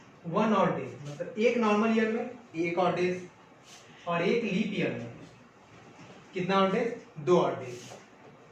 1 ऑड डेज। मतलब एक नॉर्मल ईयर में 1 ऑड डेज, और एक लीप ईयर में कितना ऑड डेज? 2 odd days.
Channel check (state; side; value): identical; both; correlation 1.00